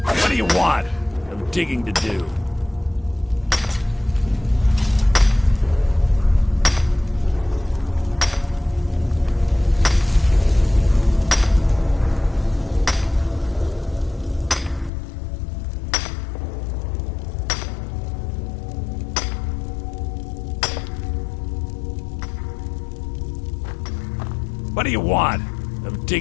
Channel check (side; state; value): right; drops out; at 14.9 s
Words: What do you want? I'm digging to do. What do you want? I'm